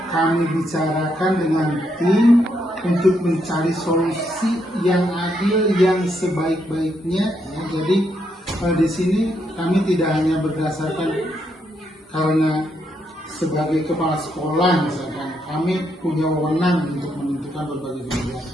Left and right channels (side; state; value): both; normal; correlation 0.78